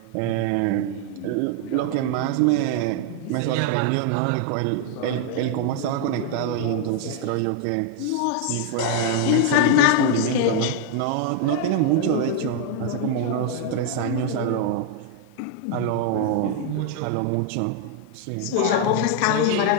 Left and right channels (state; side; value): different; both; correlation 0.00